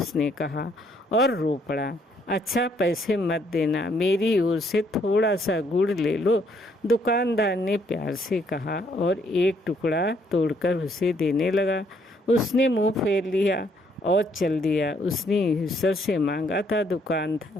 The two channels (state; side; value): normal; both; correlation 0.69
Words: कहा और रो पड़ा। अच्छा, पैसे मत देना, मेरी ओर से थोड़ा सा गुड़ ले लो, दुकानदार ने प्यार से कहा और एक टुकड़ा तोड़कर उसे देने लगा। उसने मुंह फेर लिया और चल दिया। उसने ईश्वर से मांगा था,